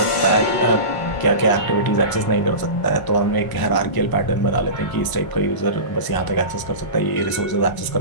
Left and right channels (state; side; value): late; right; 1.0 ms